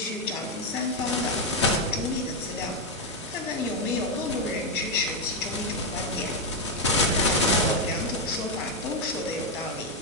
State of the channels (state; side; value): normal; both; correlation 0.04